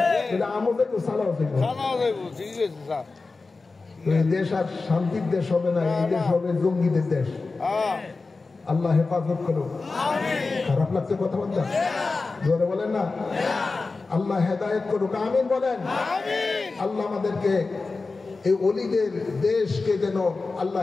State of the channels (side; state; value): right; quieter; 3.9 dB